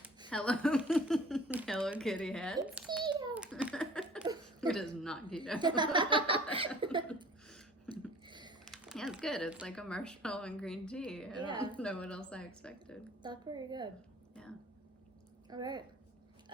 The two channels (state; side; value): normal; both; correlation 0.48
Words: Hello Kitty heads. It's keto. It is not keto. Yeah, it's good. It's like a marshmallow and green tea. I don't know what else I expected. That's pretty good. Yeah. Alright.